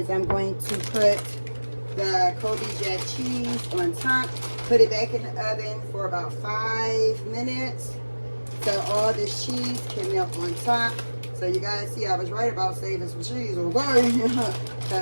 I'm going to put the Kobe Jack cheese on top, put it back in the oven for about 5 minutes so all this cheese can melt on top. So you guys see I was right about saving some cheese, okay?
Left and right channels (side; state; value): both; inverted; correlation -1.00